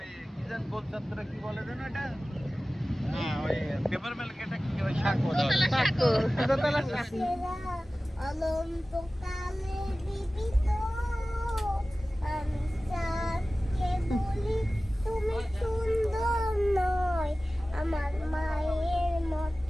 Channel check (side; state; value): both; normal; correlation 0.97